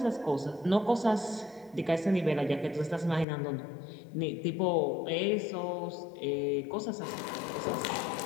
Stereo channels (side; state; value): right; drops out; at 3.2 s